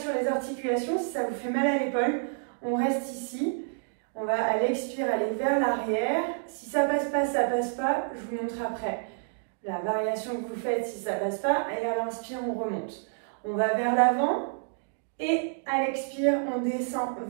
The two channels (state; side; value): silent; left; digital silence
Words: les articulations. Si ça vous fait mal à l'épaule, on reste ici. On va à l'expire aller vers l'arrière. Si ça passe pas, ça passe pas. Je vous montre après la variation que vous faites si ça passe pas. Et à l'inspire, on remonte. On va vers l'avant et à l'expire, on descend